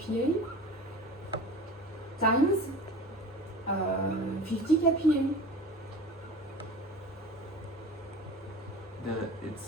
times 50 kPa. It's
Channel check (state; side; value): normal; both; correlation 0.37